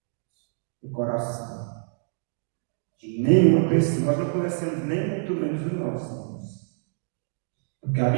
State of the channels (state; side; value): silent; left; digital silence